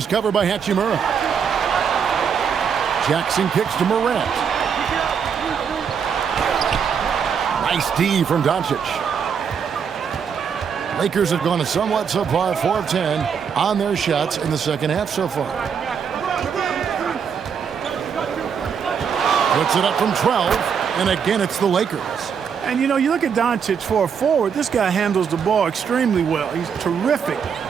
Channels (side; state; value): left; quieter; 7.0 dB